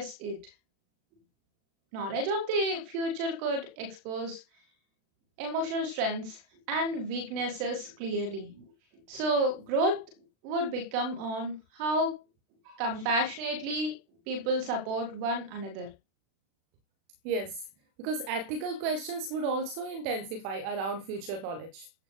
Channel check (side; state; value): left; late; 36 ms